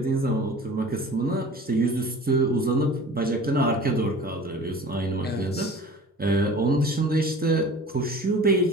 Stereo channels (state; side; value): normal; both; correlation 0.42